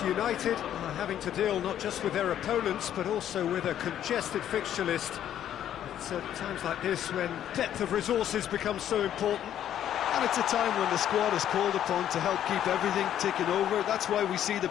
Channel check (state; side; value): quieter; right; 10.7 dB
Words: United are having to deal not just with their opponents, but also with a congested fixture list. It's at times like this when depth of resources becomes so important. And it's a time when the squad is called upon to help keep everything ticking over. That's why we see the